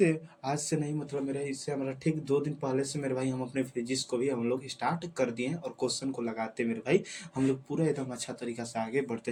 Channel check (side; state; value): both; identical; correlation 1.00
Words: नहीं, मतलब मेरे इससे हमारा ठीक 2 दिन पहले से मेरे भाई हम अपने फिजिक्स को भी हम लोग स्टार्ट कर दिए हैं और क्वेश्चन को लगाते मेरे भाई हम लोग पूरा एकदम अच्छा तरीका से आगे